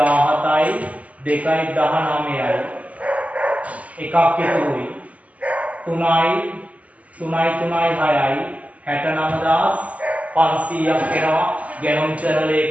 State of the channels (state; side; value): late; left; 0.071 ms